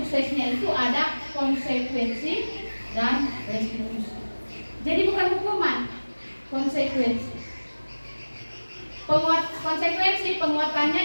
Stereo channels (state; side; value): inverted; both; correlation -1.00